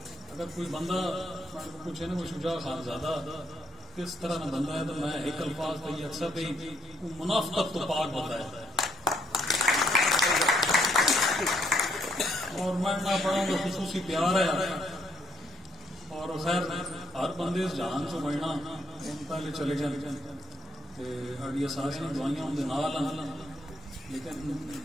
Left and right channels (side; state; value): both; normal; correlation 0.72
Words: اگر کوئی بندہ پوچھے نا وہ شجاع خان زادہ کس طرح کا بندہ ہے تو میں ایک الفاظ پہ یہ اکثر پہ منافقت تو پاک بندہ ہے، اور میں نہ پڑھوں گا خصوصی پیار ہے، اور خیر ہر بندے اس جہان سے بڑھنا ان پہلے چلے جائیں اڈیا سارے دعائیاں اندر نال ہیں، لیکن